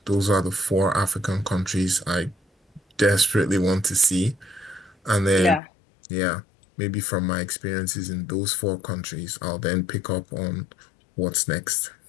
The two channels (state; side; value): drops out; right; at 5.6 s